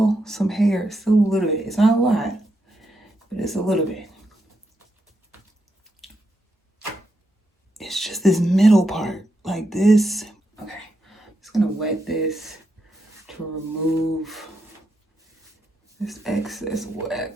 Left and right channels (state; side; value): normal; both; correlation 0.82